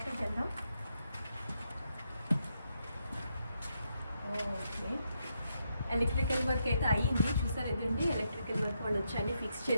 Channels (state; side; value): inverted; both; correlation -0.80